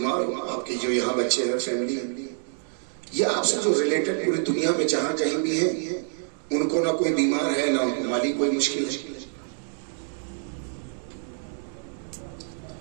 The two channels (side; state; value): left; silent; 60 dB below the other